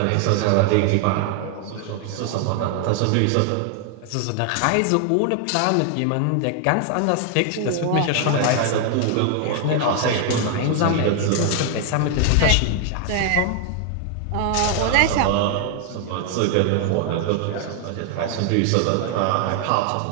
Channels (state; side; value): different; both; correlation 0.00